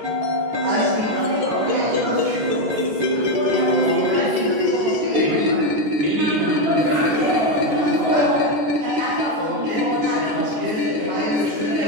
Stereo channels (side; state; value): left; late; 15 ms